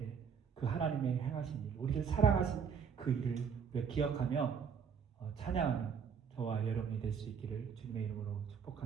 그 하나님의 행하신 일, 우리를 사랑하신 그 일을 우리가 기억하며 찬양하는 저와 여러분이 될 수 있기를 주님의 이름으로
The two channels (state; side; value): quieter; left; 6.8 dB